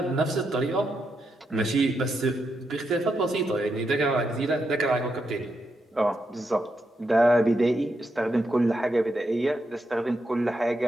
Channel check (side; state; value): both; normal; correlation 0.83